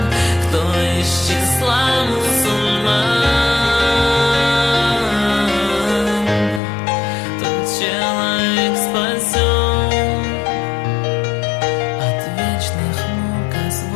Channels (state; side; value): drops out; right; at 6.6 s